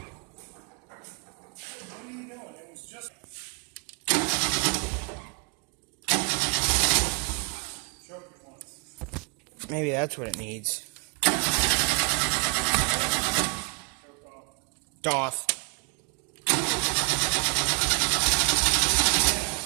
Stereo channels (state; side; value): quieter; left; 36.3 dB